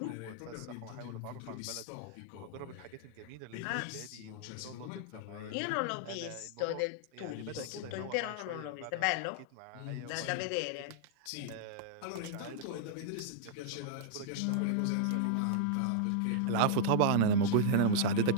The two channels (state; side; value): different; both; correlation -0.01